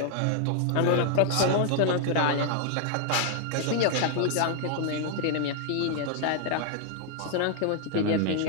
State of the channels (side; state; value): both; different; correlation 0.00